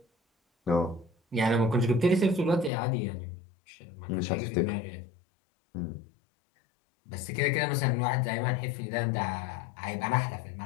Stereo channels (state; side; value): drops out; right; at 2.7 s